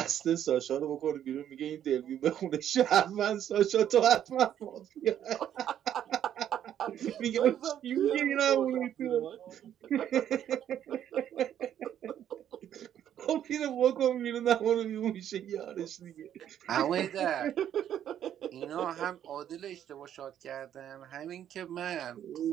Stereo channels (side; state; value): left; quieter; 10.3 dB